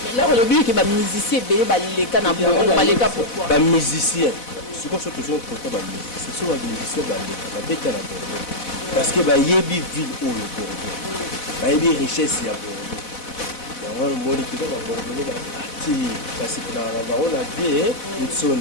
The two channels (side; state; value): right; late; 4.0 ms